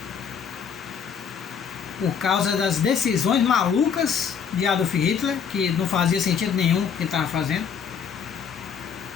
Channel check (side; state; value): right; quieter; 7.1 dB